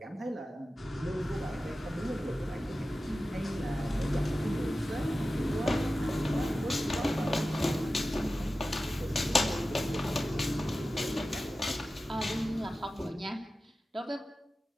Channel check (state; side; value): normal; both; correlation 0.94